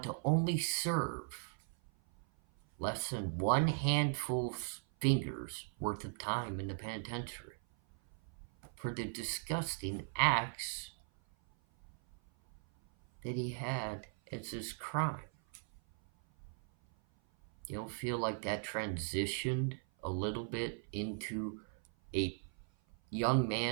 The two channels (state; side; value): silent; left; 52 dB below the other